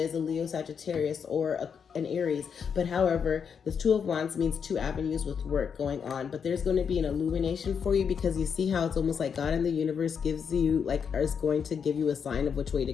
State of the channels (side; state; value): right; quieter; 6.8 dB